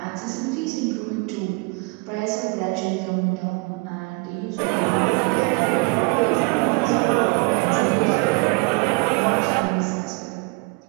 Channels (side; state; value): left; quieter; 29.2 dB